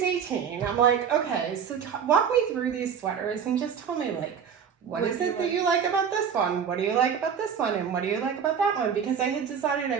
18. I'm like, okay, so walk me through these sweaters and just tell me, like, what is it that you like about this one? What do you like about this one? And what do you like about that one? Because I had decided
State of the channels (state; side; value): quieter; left; 7.4 dB